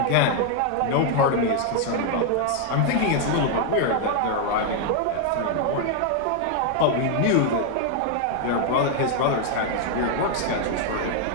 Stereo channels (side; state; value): both; different; correlation 0.00